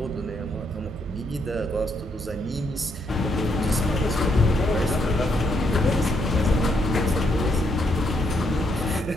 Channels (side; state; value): both; normal; correlation 0.76